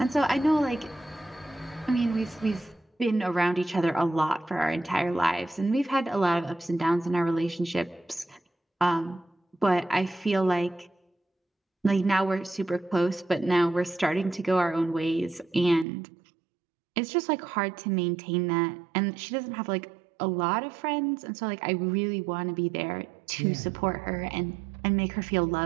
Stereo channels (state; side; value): drops out; left; at 15.9 s